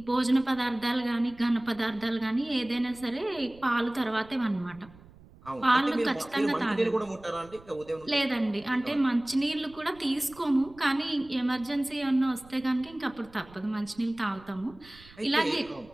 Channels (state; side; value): noise; right; rumble, 23 dB below the sound